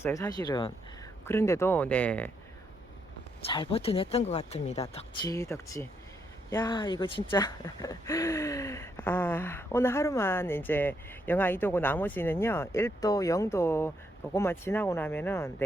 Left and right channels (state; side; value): normal; both; correlation 0.77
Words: 사실은. 그런데도 네 잘 버텨냈던 것 같습니다. 덕지 야 이거 진짜 오늘 하루만 이제 영하 2도고 나머지는요 1도 0도 그것만 지나고 나면은